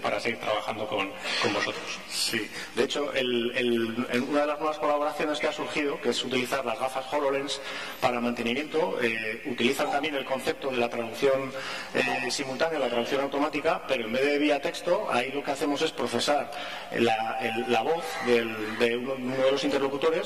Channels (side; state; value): left; noise; rumble, 30 dB below the sound